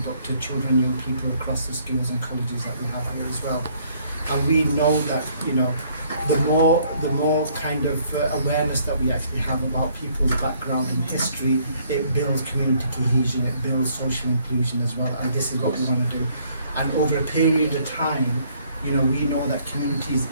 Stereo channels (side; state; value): both; inverted; correlation -0.64